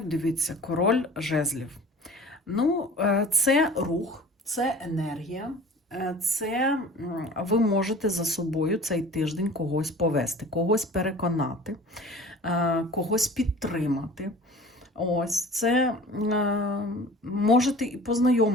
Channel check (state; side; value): normal; both; correlation 0.43